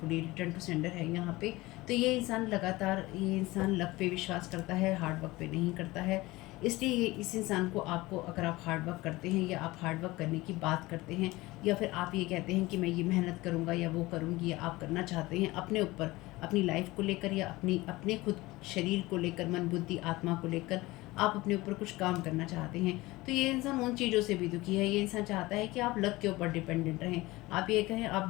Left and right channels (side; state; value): right; quieter; 20.1 dB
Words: return to sender है यहाँ पे। तो ये इंसान लगातार, ये इंसान लक पे विश्वास करता है, हार्ड वर्क पे नहीं करता है। इसलिए ये इस इंसान को, आपको, अगर आप हार्ड वर्क करते हैं या आप हार्ड वर्क करने की बात करते हैं, या फिर आप ये कहते हैं कि मैं ये मेहनत करूँगा या वो करूँगी, या आप करना चाहते हैं अपने ऊपर, अपनी लाइफ को लेकर, या अपने खुद शरीर को लेकर, मन बुद्धि आत्मा को लेकर आप अपने ऊपर कुछ काम करना चाहते हैं, तो ये इंसान उन चीज़ों से भी दुखी है। ये इंसान चाहता है कि आप लक के ऊपर डिपेंडेंट रहें, आप ये कहें